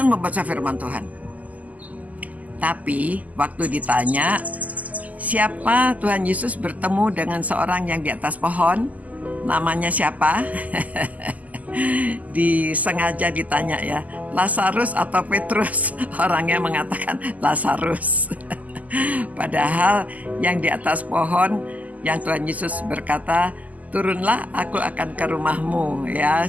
membaca firman Tuhan. Tapi waktu ditanya siapa Tuhan Yesus bertemu dengan seorang yang di atas pohon, namanya siapa? Disengaja ditanya, ya, Lazarus atau Petrus. Orangnya mengatakan Lazarus. Padahal yang di atas pohon, yang Tuhan Yesus berkata, turunlah, aku akan ke rumahmu, ya.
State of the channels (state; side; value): late; left; 0.076 ms